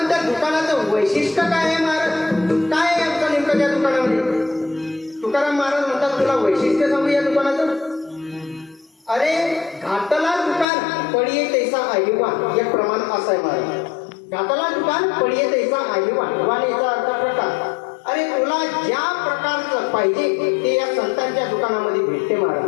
त्या दुकानाचं वैशिष्ट्य काय आहे महाराज? काय आहे आमचं नेमकं त्या दुकानामध्ये? तुकाराम महाराज म्हणतात, तुला वैशिष्ट्य सांगू या दुकानाचं. अरे घातला दुकान पडिये तैसा आईवान, एक प्रमाण असं आहे महाराज. घातला दुकान पडिये तैसा आईवान, वान याचा अर्थ प्रकार. अरे तुला ज्या प्रकारचं पाहिजे ते या संतांच्या दुकानामध्ये भेटते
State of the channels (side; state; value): right; drops out; at 10.7 s